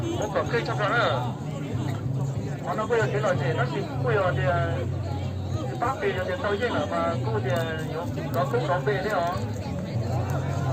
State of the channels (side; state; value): both; identical; correlation 1.00